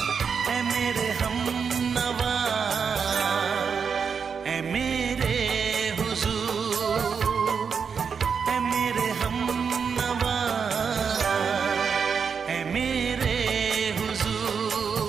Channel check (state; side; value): quieter; left; 6.2 dB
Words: है मेरे हमनवा, है मेरे हुजूर, है मेरे हमनवा, है मेरे